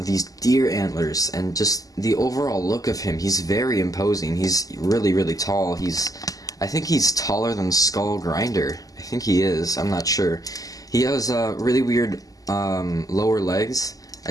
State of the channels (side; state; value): right; late; 0.17 ms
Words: deer antlers, and just the overall look of him. He's very imposing. He's really tall. I think he's taller than Skullgrinder. I think he is. I'm not sure. He has really weird lower legs.